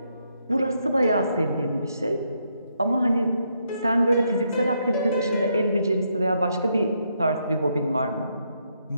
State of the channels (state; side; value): inverted; both; correlation -0.77